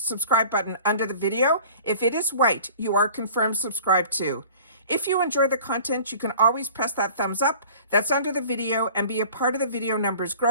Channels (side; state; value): both; inverted; correlation -0.45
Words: button under the video. If it is white, you are confirmed subscribed too. If you enjoy the content, you can always press that thumbs up that's under the video and be a part of the video numbers